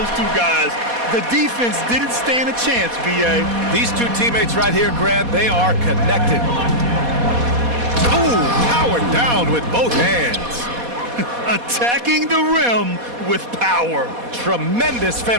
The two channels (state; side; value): late; left; 4.2 ms